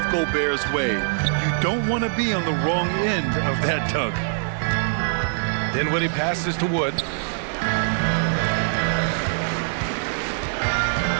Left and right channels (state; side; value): silent; left; digital silence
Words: Gobert's way. You don't want to be on the wrong end of that tug. Dinwiddie passes to Wood.